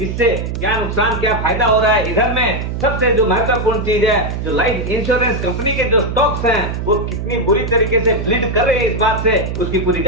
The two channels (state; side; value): noise; right; hum, 4 dB below the sound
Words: इससे क्या नुकसान क्या फायदा हो रहा है। इधर में सबसे जो महत्वपूर्ण चीज है, जो लाइफ इंश्योरेंस कंपनी के जो स्टॉक्स हैं वो कितनी बुरी तरीके से ब्लीड कर रहे हैं, इस बात से उसकी पूरी